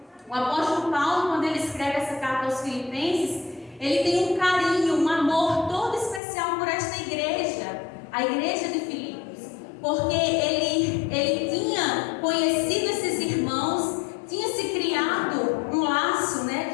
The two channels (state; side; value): drops out; right; at 6.2 s